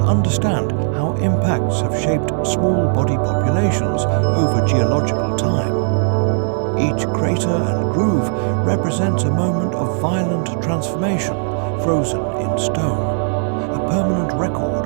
understand how impacts have shaped small body populations over geological time. Each crater and groove represents a moment of violent transformation, frozen in stone, a permanent record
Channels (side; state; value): left; silent; 67 dB below the other